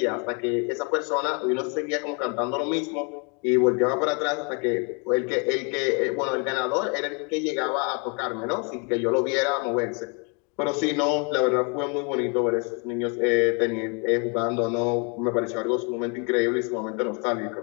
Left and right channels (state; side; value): quieter; right; 35.1 dB